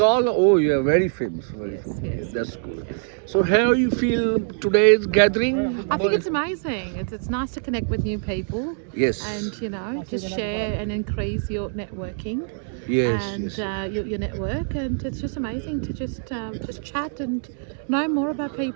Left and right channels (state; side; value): silent; left; digital silence